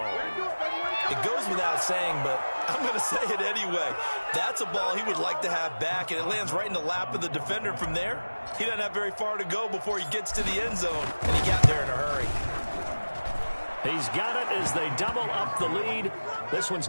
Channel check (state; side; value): inverted; both; correlation -1.00